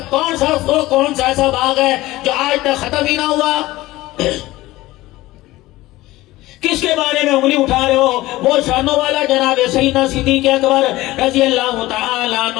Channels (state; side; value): quieter; right; 17.9 dB